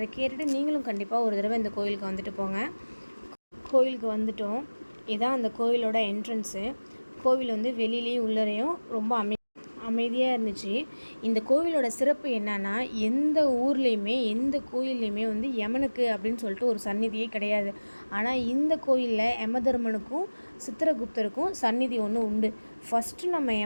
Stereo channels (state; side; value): inverted; both; correlation -1.00